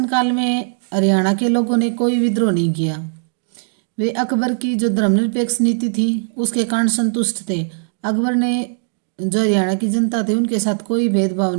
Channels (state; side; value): silent; left; digital silence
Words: में हरियाणा के लोगों ने कोई विद्रोह नहीं किया। वे अकबर की जो धर्मनिरपेक्ष नीति थी उसके कारण संतुष्ट थे। अकबर ने जो हरियाणा की जनता थी उनके साथ कोई भेदभाव